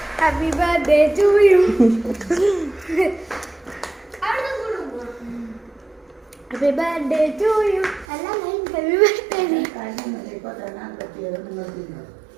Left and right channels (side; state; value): left; drops out; at 8.1 s